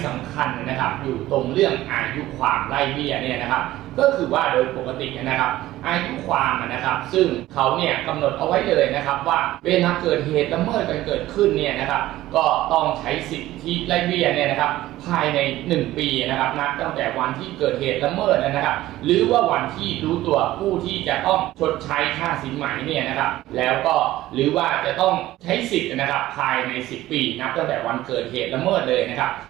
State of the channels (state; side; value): quieter; left; 15.6 dB